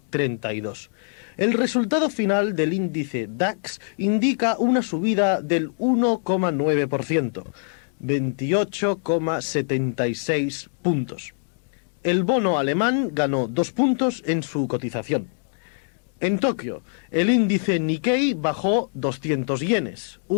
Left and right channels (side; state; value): right; silent; digital silence